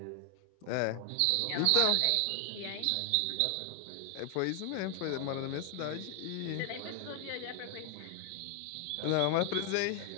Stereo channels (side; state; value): both; different; correlation 0.01